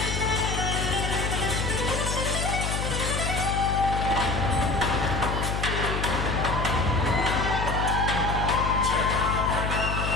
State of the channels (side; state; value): left; noise; hum, 1 dB below the sound